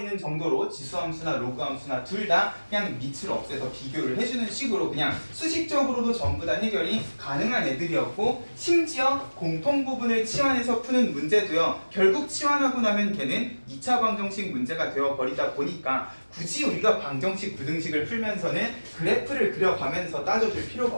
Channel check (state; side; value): inverted; both; correlation -1.00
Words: 정도로 지수함수나 로그함수나 둘 다 그냥 밑을 없애서 비교를 해주는 식으로 그냥 수식적으로도 전부 다 해결이 가능한 애들이었고, 심지어 공통부분을 치환해서 푸는 문제도요, 결국 치환하고 나면 걔는 2차 방정식 문제가 되어버리다 보니까 굳이 우리가 방정식, 부등식을 풀면서는 그래프를 그려가면서 따져줄 필요가